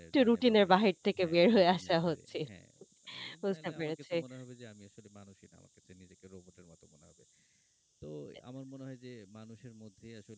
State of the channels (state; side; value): identical; both; correlation 1.00